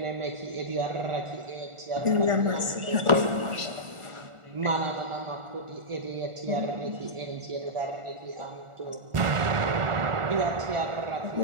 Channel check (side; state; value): left; late; 1.4 ms